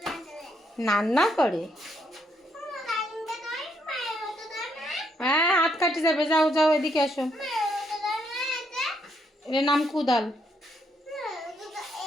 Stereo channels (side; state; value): both; normal; correlation 0.74